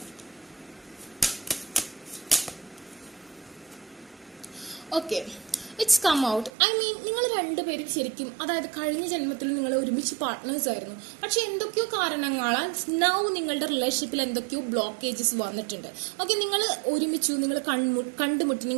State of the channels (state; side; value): drops out; left; at 6.5 s